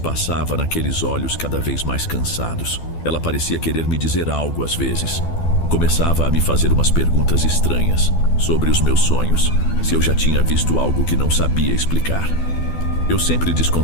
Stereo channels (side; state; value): right; late; 12 ms